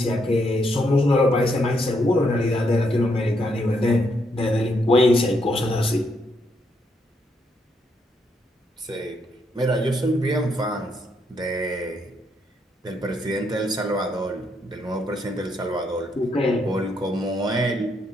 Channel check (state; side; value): normal; both; correlation 0.76